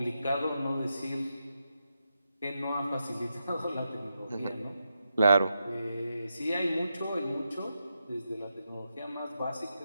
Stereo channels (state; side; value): inverted; both; correlation -0.86